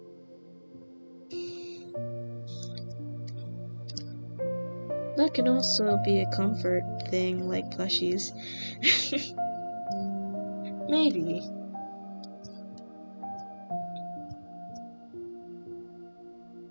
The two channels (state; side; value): inverted; both; correlation -1.00